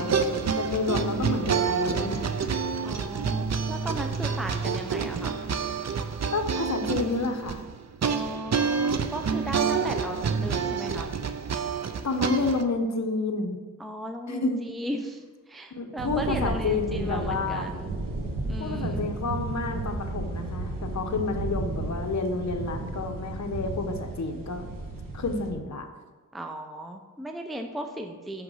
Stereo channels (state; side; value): normal; both; correlation 0.22